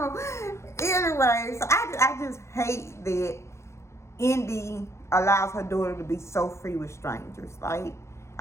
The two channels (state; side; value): late; right; 0.13 ms